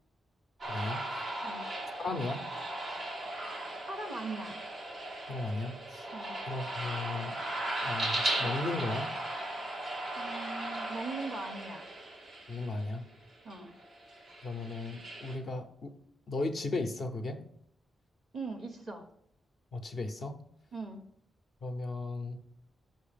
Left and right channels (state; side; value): normal; both; correlation 0.79